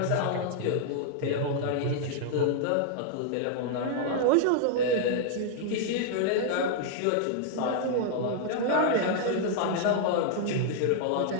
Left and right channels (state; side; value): different; both; correlation -0.01